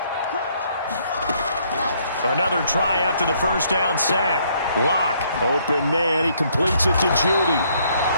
Another try after the 1st down sack. Lock, open man, he completes it to Judy.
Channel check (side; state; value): both; inverted; correlation -0.67